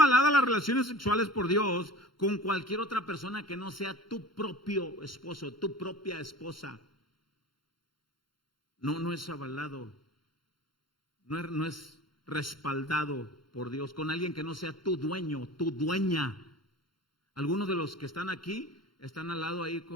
las relaciones sexuales por Dios con cualquier otra persona que no sea tu propio esposo, tu propia esposa. No es avalado, no es respaldado por Dios con alguien que no sea tu dueño, tu dueña. Algunos de los que están aquí están al lado ahí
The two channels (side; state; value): right; late; 0.73 ms